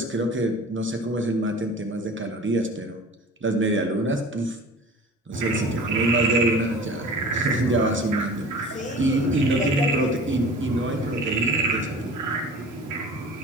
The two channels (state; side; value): normal; both; correlation 0.41